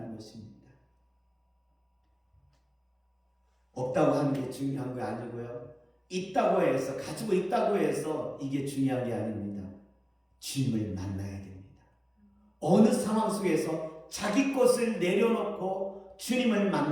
것입니다. 없다고 하는 게 중요한 거 아니고요, 있다고 해서, 가지고 있다고 해서 이게 중요한 게 아닙니다. 주님을 만나야 됩니다. 어느 상황 속에서 자기 것을 내려놓고 주님을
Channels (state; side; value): identical; both; correlation 1.00